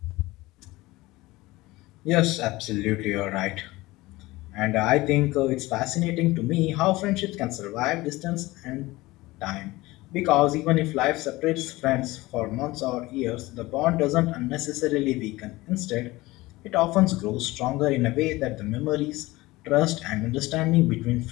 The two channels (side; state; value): right; quieter; 19.9 dB